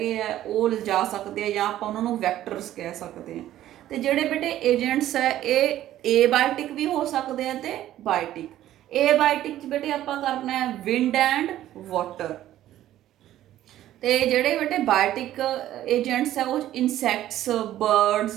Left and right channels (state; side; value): quieter; left; 13.1 dB